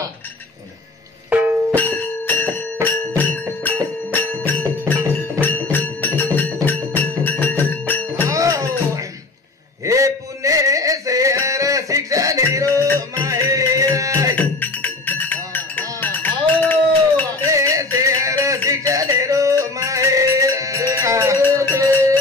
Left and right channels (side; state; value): right; quieter; 3.3 dB